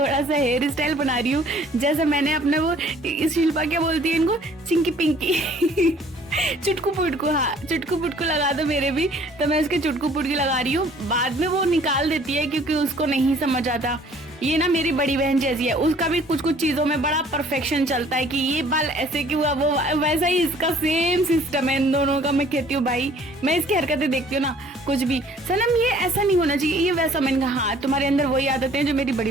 सा हेयर स्टाइल बना रही हूँ। जैसे मैंने अपने वो, इस शिल्पा क्या बोलती है इनको, चिंकी पिंकी चुटकू पुटकू, हाँ चुटकू पुटकू लगा दो मेरे भी। तो मैं इसके चुटकू पुटकी लगा रही हूँ। बाद में वो निकाल देती है क्योंकि उसको नहीं समझ आता। ये ना मेरी बड़ी बहन जैसी है, उसका भी कुछ कुछ चीजों में बड़ा परफेक्शन चलता है कि ये बाल ऐसे क्यों हुआ, वो वैसा ही इसका सेम सिस्टम है इन दोनों का। मैं कहती हूँ भाई, मैं इसकी हरकतें देखती हूँ ना, कुछ भी सनम ये ऐसा नहीं होना चाहिए, ये वैसा। मैंने कहा हाँ, तुम्हारे अंदर वही आदतें हैं जो मेरी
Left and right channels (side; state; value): both; normal; correlation 0.56